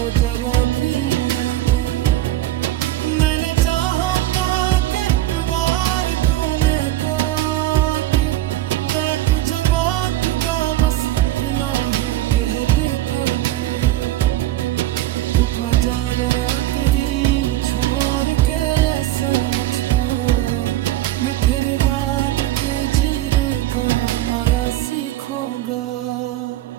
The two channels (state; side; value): quieter; left; 14.9 dB